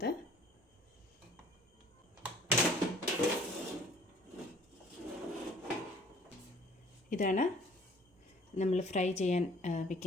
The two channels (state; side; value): normal; both; correlation 0.54